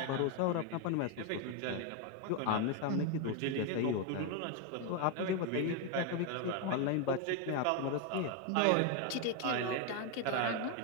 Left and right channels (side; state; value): both; different; correlation 0.02